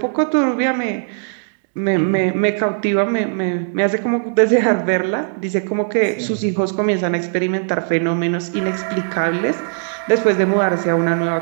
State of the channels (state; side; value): silent; left; 63 dB below the other